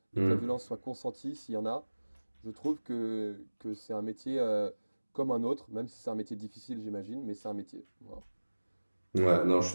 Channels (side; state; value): both; inverted; correlation -1.00